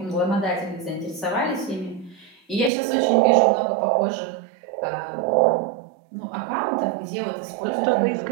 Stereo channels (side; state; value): left; drops out; at 2.7 s